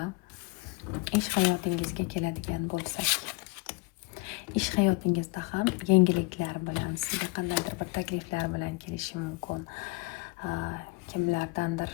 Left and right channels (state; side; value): quieter; right; 25.6 dB